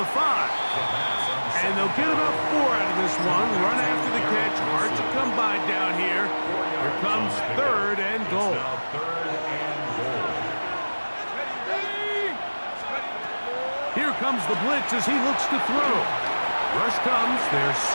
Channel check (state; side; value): inverted; both; correlation -1.00